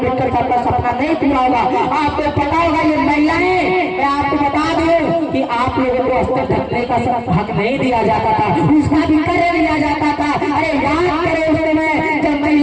साहब का सपना नहीं पूरा होगा। आपको पता होगा ये महिलाएं, मैं आपको बता दूं कि आप लोगों को अस्तर ढकने का हक नहीं दिया जाता था, उसका भी कर दिया जाता था। अरे याद करो उस समय जब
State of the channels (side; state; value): both; identical; correlation 1.00